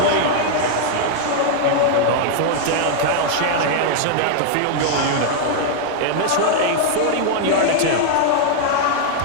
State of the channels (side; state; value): both; different; correlation 0.00